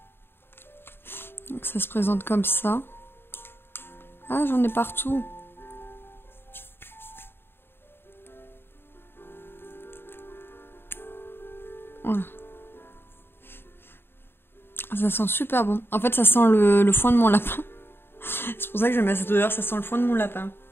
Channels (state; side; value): late; right; 0.11 ms